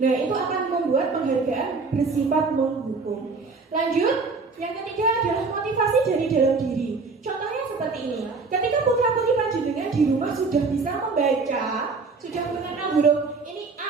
Nah, itu akan membuat penghargaan bersifat menghukum. Lanjut. Yang ketiga adalah motivasi dari dalam diri. Contohnya seperti ini. Ketika putra-putri panjenengan di rumah sudah bisa membaca, sudah mengenal huruf ini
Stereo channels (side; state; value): left; quieter; 4.3 dB